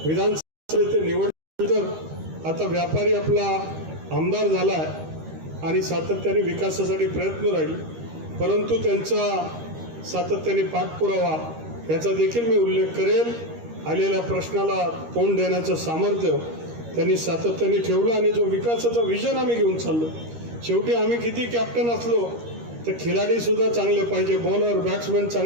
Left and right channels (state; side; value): late; left; 13 ms